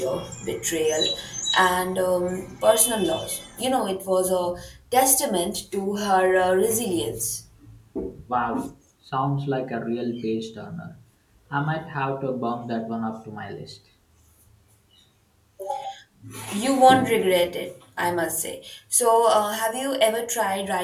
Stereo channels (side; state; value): both; identical; correlation 1.00